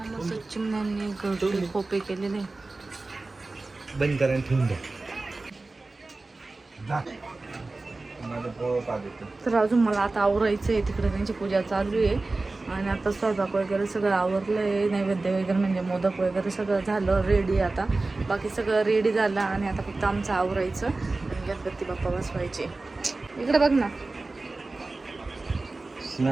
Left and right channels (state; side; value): quieter; left; 3.3 dB